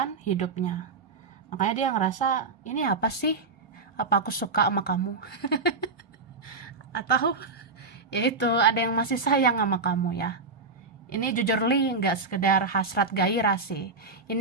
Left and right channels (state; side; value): quieter; left; 3.9 dB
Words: hidupnya. Makanya dia ngerasa, ini apa sih? Apa aku suka sama kamu? Atau ya itu, ada yang masih sayang sama kamu ya. Ini jujur li nggak sekedar hasrat gairah sih.